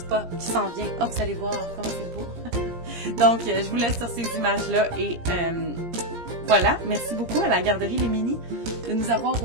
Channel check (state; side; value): late; left; 17 ms